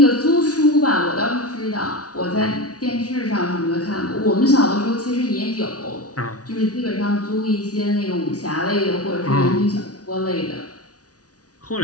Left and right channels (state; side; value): late; right; 0.68 ms